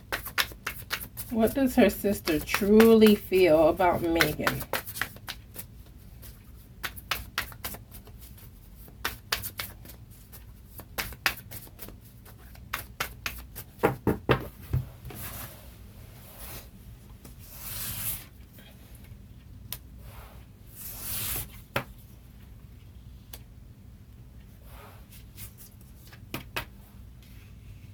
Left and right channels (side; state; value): both; identical; correlation 1.00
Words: what does her sister truly feel about Meghan?